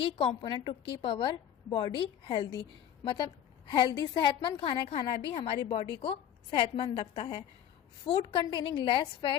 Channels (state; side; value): quieter; right; 10.1 dB